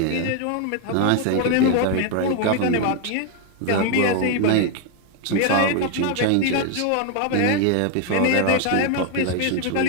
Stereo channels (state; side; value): different; both; correlation 0.01